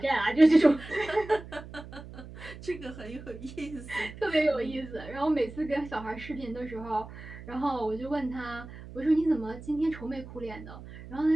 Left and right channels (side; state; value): right; noise; hum, 14 dB below the sound